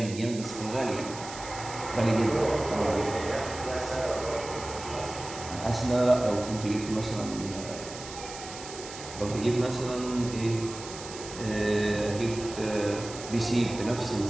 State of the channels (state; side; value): noise; right; hiss, 12 dB below the sound